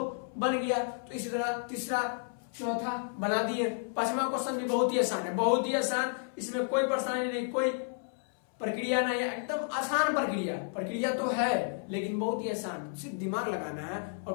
बन गया। तो इसी तरह तीसरा चौथा बना दिए। पांचवा क्वेश्चन भी बहुत ही आसान है, बहुत ही आसान, इसमें कोई परेशानी नहीं, कोई प्रक्रिया नहीं है, एकदम आसान प्रक्रिया तो है लेकिन बहुत ही आसान, सिर्फ दिमाग लगाना है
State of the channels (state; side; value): silent; right; 57 dB below the other